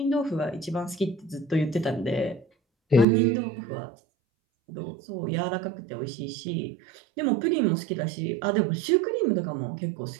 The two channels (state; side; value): drops out; left; at 3.1 s